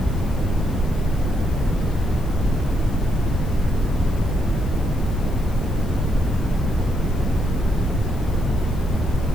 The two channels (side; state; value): left; noise; hiss, 23 dB below the sound